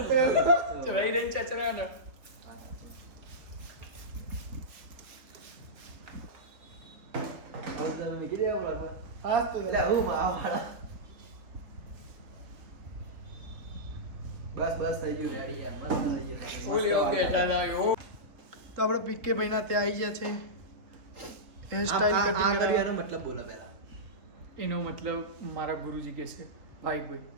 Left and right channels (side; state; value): left; late; 3.5 ms